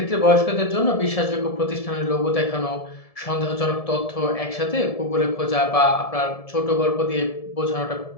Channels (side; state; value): right; late; 1.7 ms